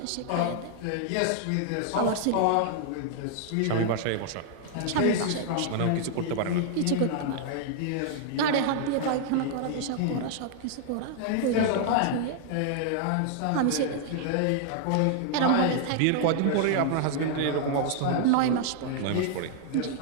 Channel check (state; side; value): different; both; correlation 0.00